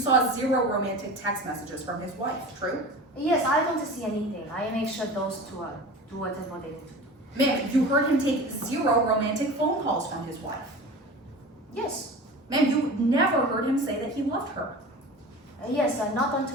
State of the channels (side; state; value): both; normal; correlation 0.35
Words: 0 romantic text messages from his wife, true? Yes, I don't see anything. I make sure those two do whatever they need to do. Ma'am, you heard him take 0 romantic phone calls from his wife. Yes. Ma'am, you never heard him say that he loved her. Yes, not